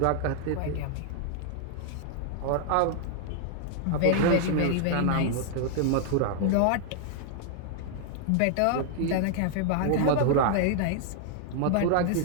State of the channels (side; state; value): both; different; correlation 0.00